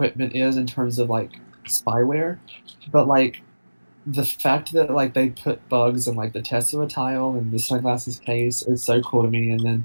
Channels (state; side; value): inverted; both; correlation -1.00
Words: is in terms of like spyware, but like the fact that like they put bugs in like the Tesla tile and the sunglasses case is so cool to me. And